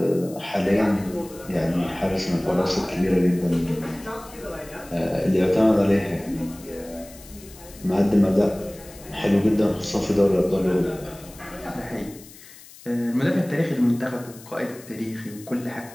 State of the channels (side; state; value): left; noise; hiss, 20 dB below the sound